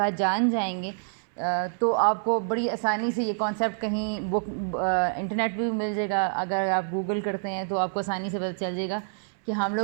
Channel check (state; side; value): silent; left; digital silence